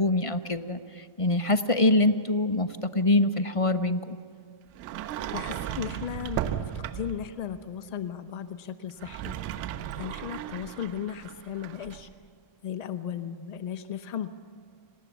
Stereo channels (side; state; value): right; late; 1.5 ms